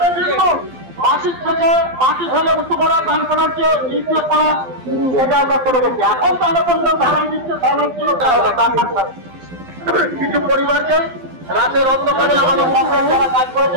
বিল্কুল মাসিক থেকে মাটি ফেলে উঁচু করা, ধান করার চেয়ে নিচে করা, এটা আমরা করে গেছি। এখন তাহলে পর্যন্ত ধারাই দিচ্ছে, কিছু পরিবারকে রাতের অন্ধকারে আমাদের সরকার যারা কাজ করেছে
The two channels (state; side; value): late; left; 12 ms